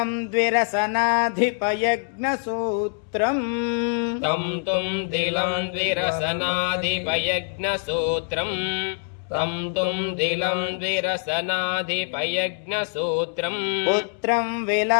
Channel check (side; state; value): right; silent; 62 dB below the other